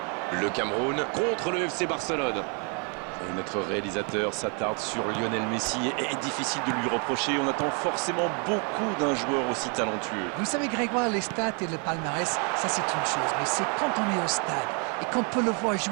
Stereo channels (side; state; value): left; quieter; 36.6 dB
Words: Le Cameroun contre le FC Barcelone. Et notre réalisateur s'attarde sur Lionel Messi et est difficile de lui reprocher. On attend forcément beaucoup d'un joueur aussi talentueux. Vous savez, Grégoire, les stats et le palmarès, ça c'est une chose. Mais c'est quand on est au stade et qu'on peut le voir